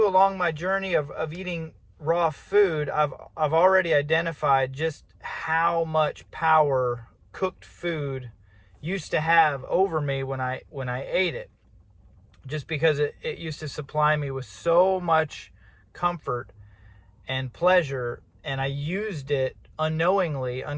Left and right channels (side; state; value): both; identical; correlation 1.00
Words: along my journey of eating raw food, I've already identified just how much power cooked food used to have over me when I ate it, just because it used to supply me with so much comfort and pleasure, and I used it unknowingly,